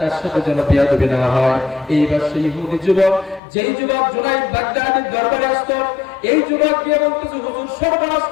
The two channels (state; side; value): drops out; right; at 3.4 s